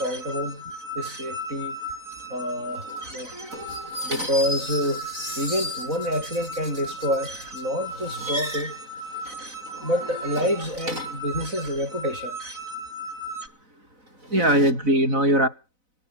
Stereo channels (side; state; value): left; late; 4.0 ms